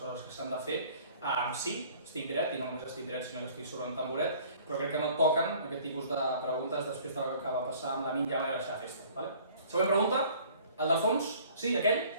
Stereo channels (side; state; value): both; inverted; correlation -0.52